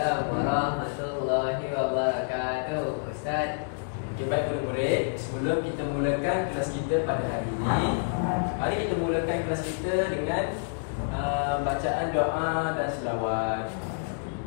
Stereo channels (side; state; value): right; silent; digital silence